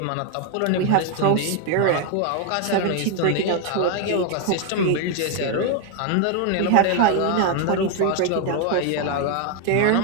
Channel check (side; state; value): both; different; correlation 0.01